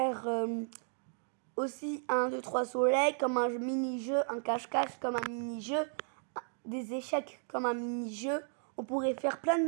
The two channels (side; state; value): left; silent; 55 dB below the other